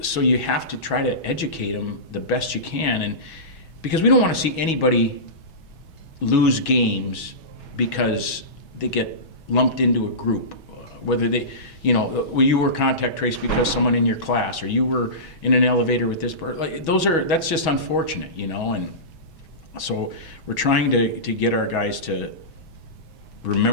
so you have to try to educate them the best you can. And because we don't want to see anybody lose games because they get lumped into a group, whether they, you were contact traced because someone in your class, or you were in an elevator with this person. That's just unfortunate, and so we're trying to get our guys to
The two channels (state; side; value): late; right; 6.2 ms